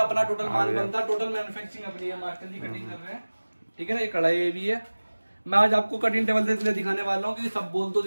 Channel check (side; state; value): both; inverted; correlation -1.00